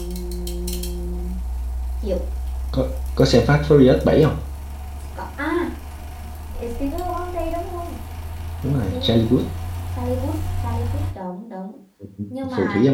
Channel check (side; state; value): both; identical; correlation 1.00